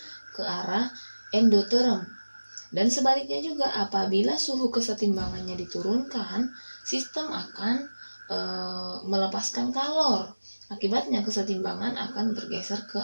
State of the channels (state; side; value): inverted; both; correlation -1.00